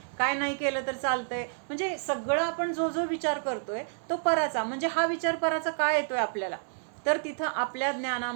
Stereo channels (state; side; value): silent; left; digital silence